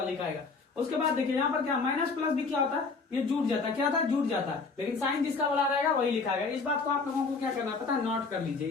लिखाएगा। उसके बाद देखिए यहाँ पर क्या, माइनस प्लस भी क्या होता है, ये जुट जाता है। क्या होता है, जुट जाता है। लेकिन साइन जिसका बड़ा रहेगा वही लिखाएगा। इस बात को आप लोगों को क्या करना पता है, नोट कर लीजिए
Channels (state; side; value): quieter; right; 4.4 dB